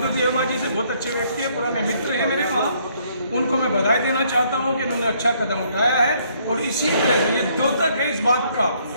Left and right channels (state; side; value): inverted; both; correlation -0.67